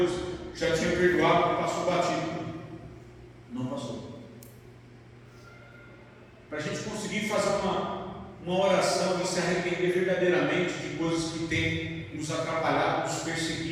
já tinha perdoado, que passou batido. Não passou. Para a gente conseguir fazer uma oração e se arrepender verdadeiramente de coisas que têm nos atrapalhado, nos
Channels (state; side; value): identical; both; correlation 1.00